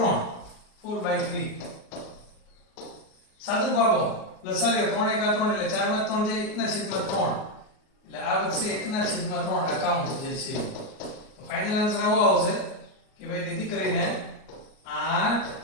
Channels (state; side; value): late; right; 38 ms